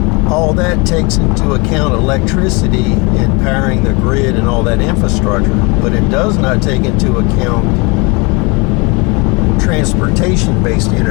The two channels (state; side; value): quieter; right; 28.6 dB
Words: all that takes into account electricity and powering the grid and all that infrastructure, but it does not take into account transportation-based